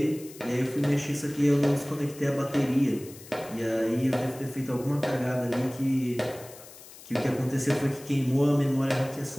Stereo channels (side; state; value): left; noise; hiss, 18 dB below the sound